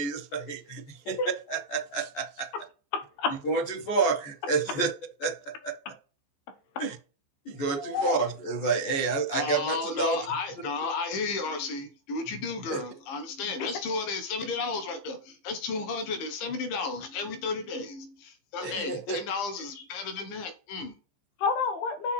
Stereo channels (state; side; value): late; right; 14 ms